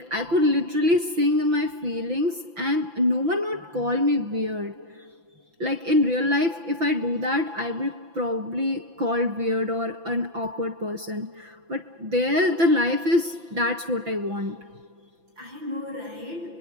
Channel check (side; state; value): left; late; 5.9 ms